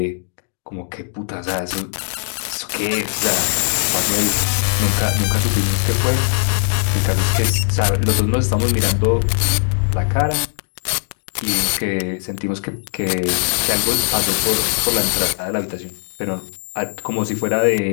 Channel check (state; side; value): silent; right; digital silence